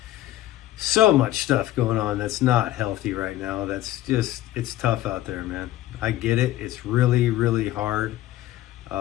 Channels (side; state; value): right; quieter; 14.4 dB